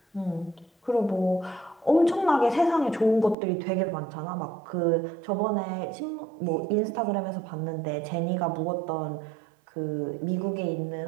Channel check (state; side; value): drops out; left; at 3.4 s